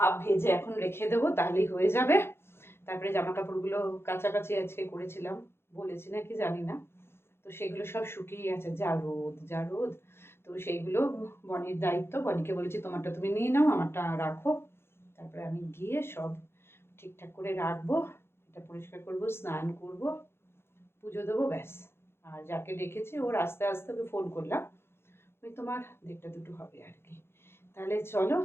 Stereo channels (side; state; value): right; late; 0.12 ms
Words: ভেজে এখন রেখে দেবো, তাহলেই হয়ে যাবে। তারপরে জামা কাপড়গুলো কাচাকাচি আজকে করেছিলাম, বলেছি নাকি জানি না, তো সেগুলো সব শুকিয়ে গেছে, যা রোদ যা রোদ। তো সেইগুলো বনির দায়িত্ব, বনিকে বলেছি তোমারটা তুমি নিয়ে নাও, আমারটা রাখো। তারপরে আমি গিয়ে সব ঠিকঠাক করে রাখবো, এটা পরিষ্কার করবো, স্নান করব, পুজো দেবো, ব্যাস। আর যাকে ডেকেছি ওর আস্তে আস্তে ওকে ফোন করলাম, ওই তোমার 1:30-2 হবে আর কি। তাহলে চলো